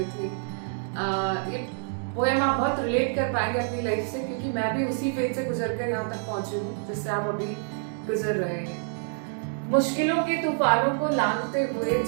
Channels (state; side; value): silent; left; digital silence